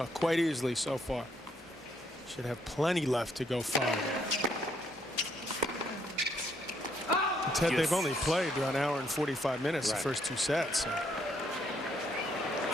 quite easily so far. Should have plenty left to go far. Ted, they've only played an hour and 45 minutes the first two sets. So.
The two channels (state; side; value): normal; both; correlation 0.71